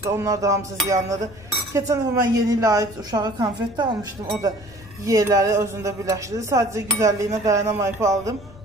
da. Onlar da hamısı ziyanlıdır. Keçən dəfə mən yeni ilə aid uşağa konfet də almışdım. O da yeyələri özündə birləşdirdi. Sadəcə güzəlliyinə dayanamayıb aldım.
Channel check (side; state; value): left; noise; rumble, 21 dB below the sound